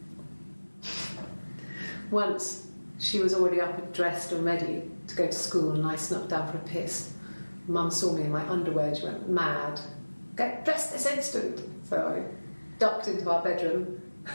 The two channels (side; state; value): both; inverted; correlation -1.00